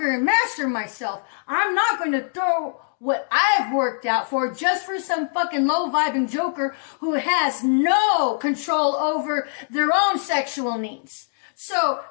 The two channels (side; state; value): right; silent; digital silence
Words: and master myself. I'm not going to throw what I've worked out for just for some fucking low-vibing joker who has no control over their own sexual needs. So